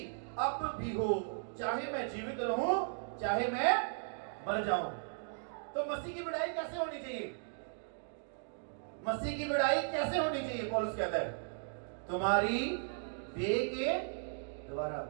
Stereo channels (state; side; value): silent; left; digital silence